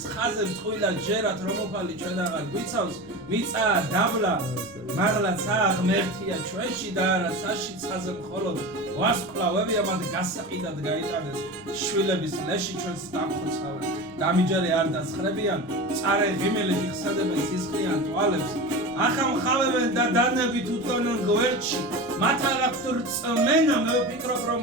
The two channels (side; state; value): left; noise; rumble, 29 dB below the sound